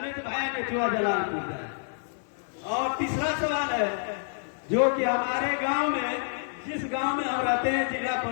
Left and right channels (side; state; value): right; silent; digital silence